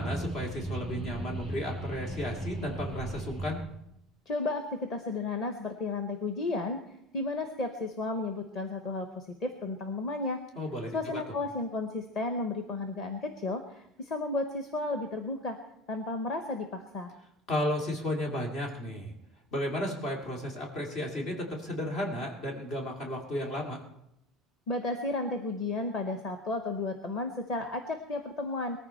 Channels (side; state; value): both; normal; correlation 0.35